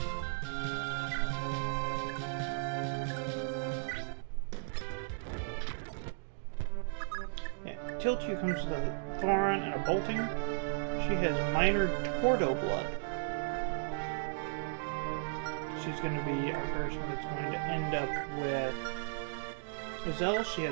Yeah, Tiltu comes with a Thoron and a Bolting. She has minor Tordo blood. She's going to be our person that's going to end up with Azelle. She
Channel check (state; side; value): silent; left; digital silence